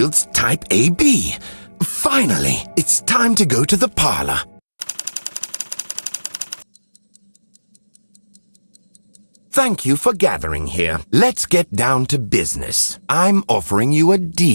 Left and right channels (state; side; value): inverted; both; correlation -1.00